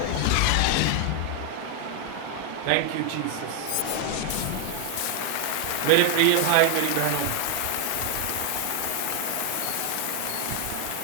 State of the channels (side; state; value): both; different; correlation 0.00